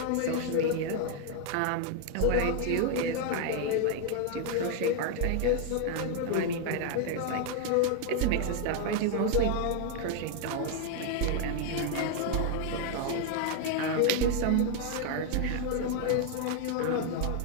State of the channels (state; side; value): different; both; correlation 0.00